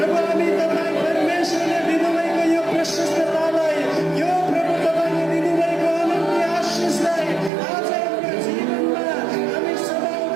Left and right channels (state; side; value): drops out; left; at 7.5 s